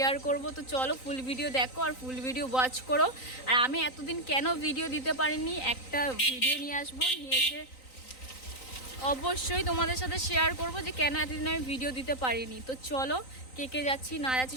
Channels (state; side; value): late; right; 3.9 ms